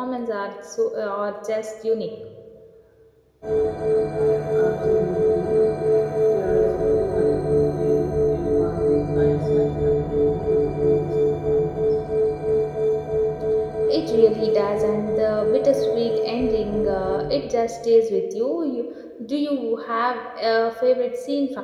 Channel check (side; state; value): both; identical; correlation 1.00